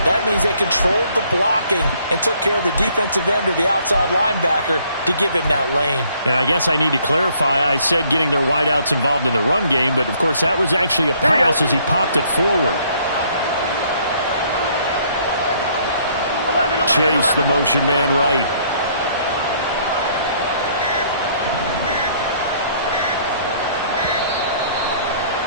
That means they controlled the blocking and took care of the defensive end or the outside linebacker to give him that lane. And I guess I need to clarify, I said getting their wideouts involved in the run game, but of course that was actually a pass as he popped it forward. Chase, the motion man right.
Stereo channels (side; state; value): both; inverted; correlation -0.63